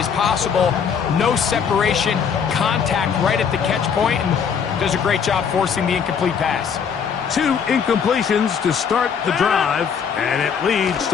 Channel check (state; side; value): quieter; right; 6.9 dB